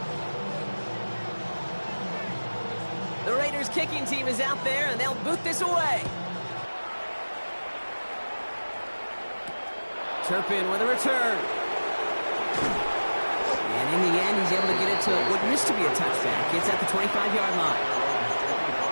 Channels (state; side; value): inverted; both; correlation -1.00